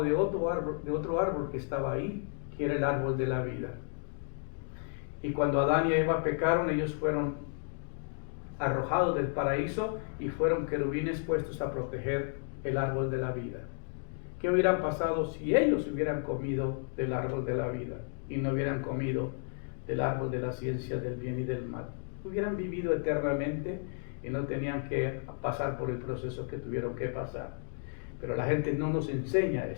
de otro árbol que estaba ahí, que era el árbol de la vida. Y cuando Adán y Eva pecaron, ellos fueron arrojados del paraíso y fueron querubines puestos a proteger el árbol de la vida. ¿Qué hubieran pasado si ellos hubieran comido del árbol de la vida y no hubieran comido del árbol de la ciencia del bien y del mal? Hubieran vivido eternamente y no tenían que pasar por el proceso que tuvieron que pasar. Pero la gente no nos enseña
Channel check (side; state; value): right; silent; 56 dB below the other